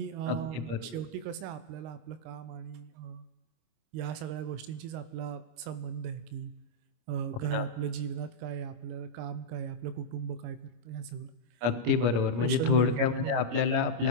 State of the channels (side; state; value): left; late; 25 ms